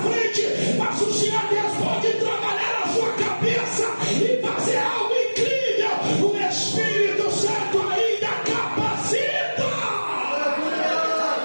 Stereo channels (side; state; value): both; inverted; correlation -1.00